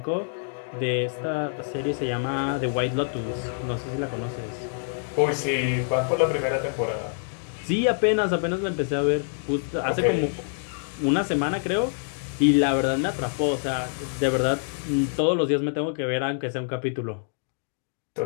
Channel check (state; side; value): silent; right; digital silence